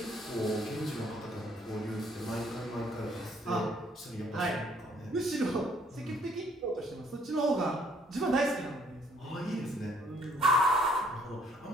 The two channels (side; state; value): both; normal; correlation 0.63